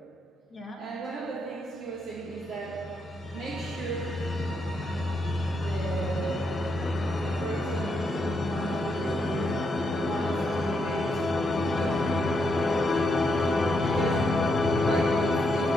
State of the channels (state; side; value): normal; both; correlation 0.80